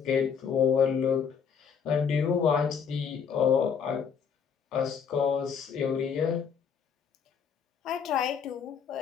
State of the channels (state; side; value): quieter; right; 6.9 dB